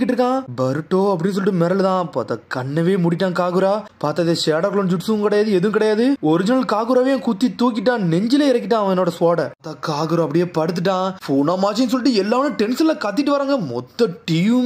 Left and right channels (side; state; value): both; identical; correlation 1.00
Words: இருக்கான். பருட்டோ அப்படின்னு சொல்லிட்டு மிரளுதான். பார்த்தா கண்ணவே மூடிட்டான் காகுரா. பார்த்தா இது ஷேடோ க்ளோன் ஜுட்ஸும் கிடையாது எதுவும் கிடையாது. ஒரிஜினல் காகுராவே குத்தி தூக்கிட்டான். நெஞ்சிலே இறக்கிட்டான் அவனோட ஸ்வாட. காகுரா அப்படியே படுத்துட்டான். புனமாச்சின்னு சொல்லிட்டு எல்லாரும் டென்ஷன்ல கத்திட்டு வராங்க. மொத்த